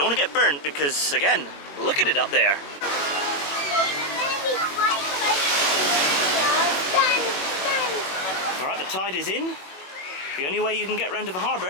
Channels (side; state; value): right; late; 21 ms